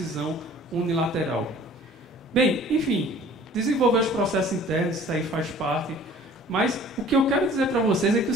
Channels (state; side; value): normal; both; correlation 0.50